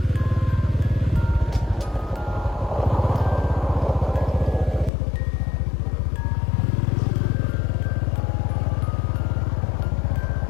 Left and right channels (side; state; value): right; drops out; at 4.9 s